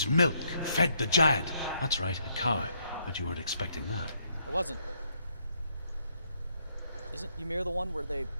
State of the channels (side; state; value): both; inverted; correlation -0.73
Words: milk fed the giant. That's right, a cow. But you weren't expecting that. I wasn't. Isn't Ymir the one where they